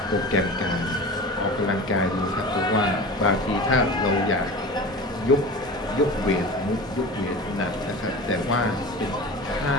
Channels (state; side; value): normal; both; correlation 0.33